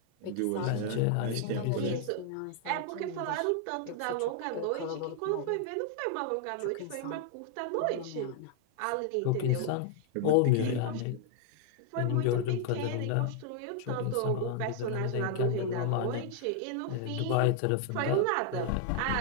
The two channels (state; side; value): different; both; correlation 0.00